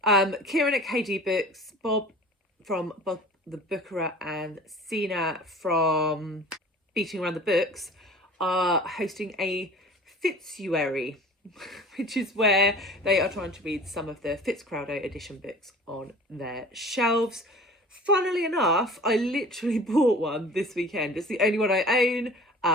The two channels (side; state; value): both; normal; correlation 0.42